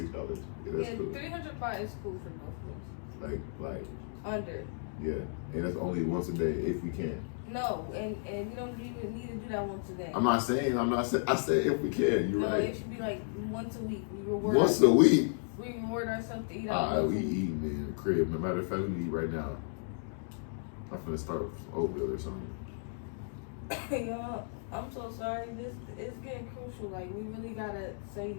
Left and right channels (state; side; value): silent; right; digital silence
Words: Yeah, that's cool. 300 baht is cool for both of us. Like. Under. Yeah, and that's only once a day if we can. No, and we don't even need to do that once a day. I said if we can. You're no, right. It should be like once a week. We reward once a week? We reward ourselves to eat out. Alright, we eating in the crib. No matter if we eat right now. I'm finna start with some oatmeal or something. Yo, I'm so sorry. This is getting crucial. Like we really gotta say